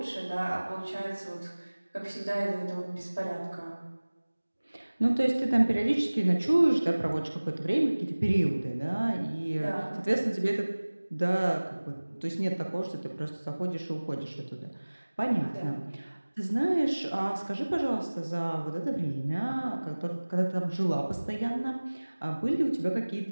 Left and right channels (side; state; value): both; inverted; correlation -1.00